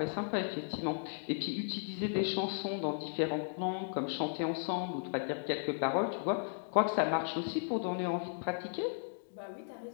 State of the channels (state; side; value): silent; right; digital silence